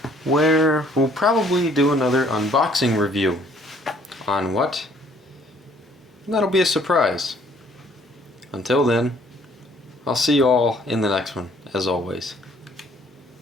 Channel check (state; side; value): normal; both; correlation 0.60